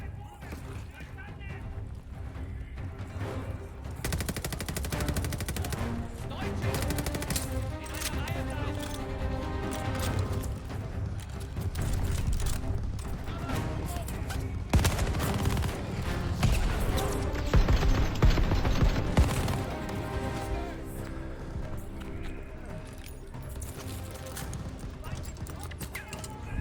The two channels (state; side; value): identical; both; correlation 1.00